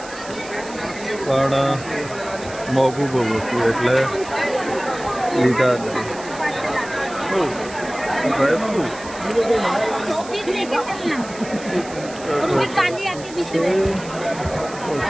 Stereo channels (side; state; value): right; noise; hiss, 16 dB below the sound